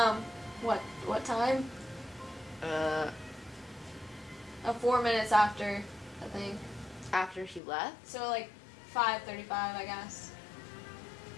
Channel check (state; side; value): drops out; right; at 7.6 s